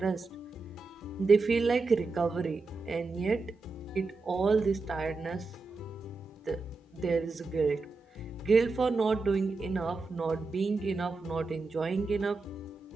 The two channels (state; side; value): quieter; left; 3.9 dB